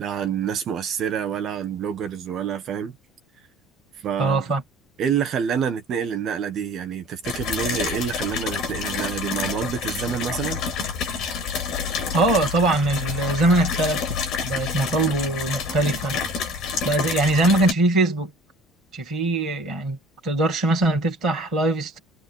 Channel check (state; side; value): normal; both; correlation 0.46